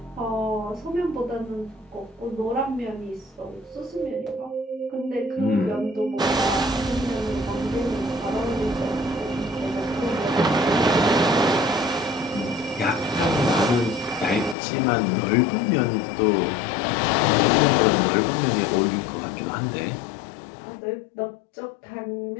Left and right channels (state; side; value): drops out; right; at 14.6 s